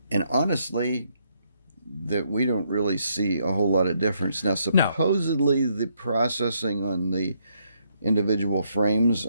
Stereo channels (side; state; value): both; inverted; correlation -0.74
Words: And honestly, that we don't really see a whole lot of difference. Now, supposedly the processing on the individual frames